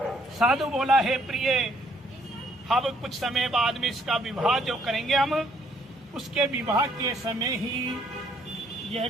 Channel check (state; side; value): normal; both; correlation 0.66